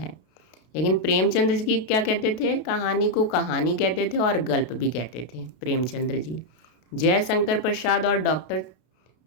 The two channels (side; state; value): right; late; 32 ms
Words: लेकिन प्रेमचंद्र जी क्या कहते थे? कहानी को कहानी कहते थे और गल्प भी कहते थे प्रेमचंद्र जी। जयशंकर प्रसाद और डॉक्टर